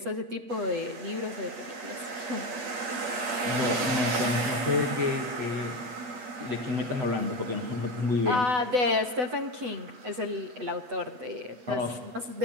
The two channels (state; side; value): late; left; 8.6 ms